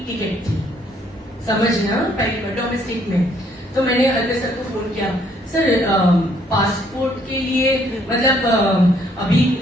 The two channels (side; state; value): both; normal; correlation 0.66